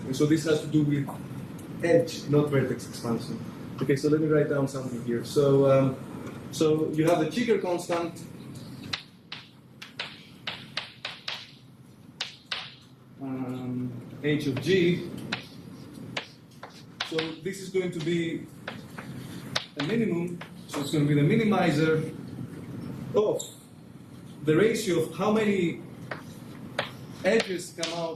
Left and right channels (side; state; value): both; identical; correlation 1.00